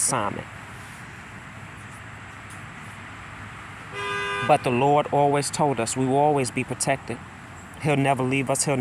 But the Lord always told us we will always be protected. He'll never leave us. He'll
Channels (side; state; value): both; identical; correlation 1.00